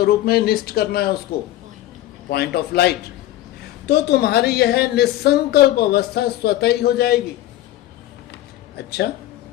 में निष्ठ करना है उसको? Point of light. तो तुम्हारी यह निसंकल्प अवस्था स्वतः ही हो जाएगी। अच्छा,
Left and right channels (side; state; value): right; quieter; 14.5 dB